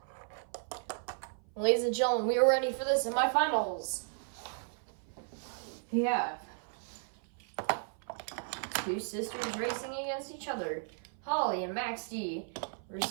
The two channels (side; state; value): left; silent; 55 dB below the other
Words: Ladies and gentlemen, we are ready for the semifinals. We have two sisters racing against each other. Holly and Max D